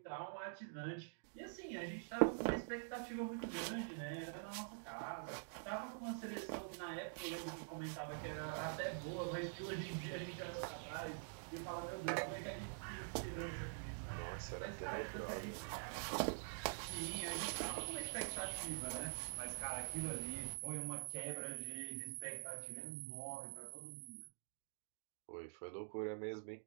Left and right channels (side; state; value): left; silent; digital silence